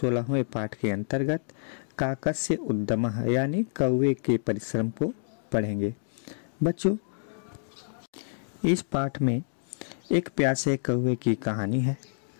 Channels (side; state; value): right; silent; digital silence